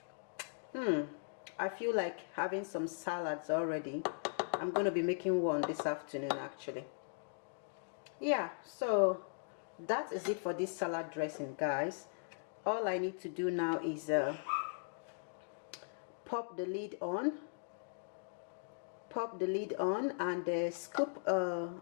I feel like having some salads already. I'm going to be making one this afternoon actually. Yeah, so that is it for this salad dressing, guys. All I need to do now is pop the lid on and scoop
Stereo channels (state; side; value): silent; right; digital silence